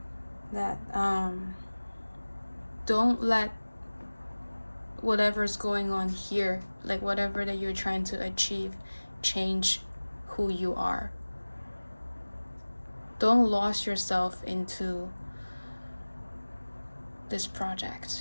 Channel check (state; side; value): inverted; both; correlation -1.00